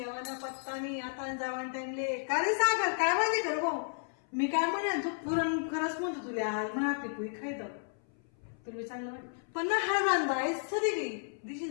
पत्ता नाही आता जावान टाइमले का रे सागर काय माहिती कर भाऊ मी काय म्हणे तू पुरण खरंच म्हणतो तुला आज म्हणा पिकू खायचं तुला चांगलं वाटत पण ना हा बांधा आहेस सरी गई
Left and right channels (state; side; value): silent; right; 56 dB below the other